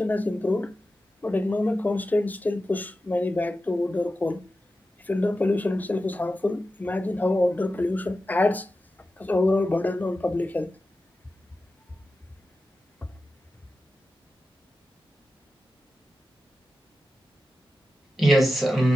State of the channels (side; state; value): both; normal; correlation 0.92